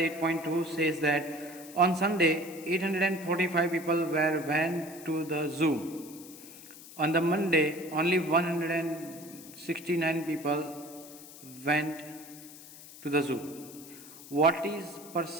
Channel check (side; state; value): left; noise; hiss, 17 dB below the sound